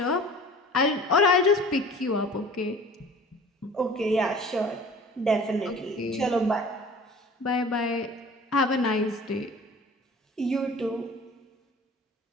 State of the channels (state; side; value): normal; both; correlation 0.44